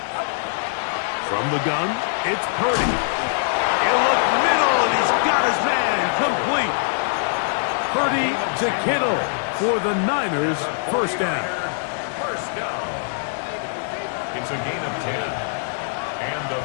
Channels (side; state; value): right; silent; 64 dB below the other